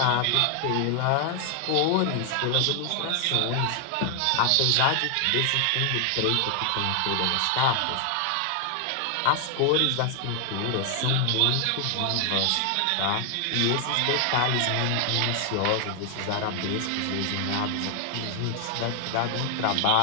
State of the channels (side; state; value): both; different; correlation 0.00